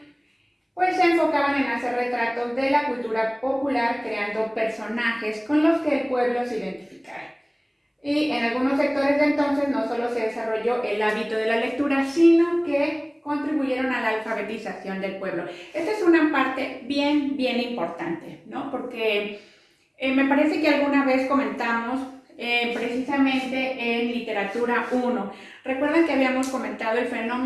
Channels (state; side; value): identical; both; correlation 1.00